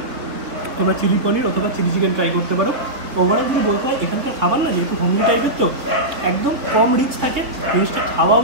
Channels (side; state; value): left; late; 3.9 ms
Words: তোমরা চিলি পনির অথবা চিলি চিকেন ট্রাই করতে পারো। ওভারঅল যদি বলতে হয়, এখানকার খাবার না যেহেতু হোমলি টাইপের, তো একদম কম রিচ থাকে, জিনিসটা খাওয়াও